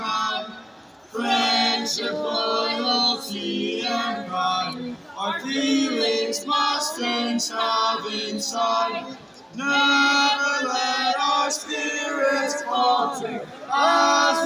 Friendship, loyalty, and pride, our feelings must and shall inside. Never let our spirits falter as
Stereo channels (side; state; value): both; identical; correlation 1.00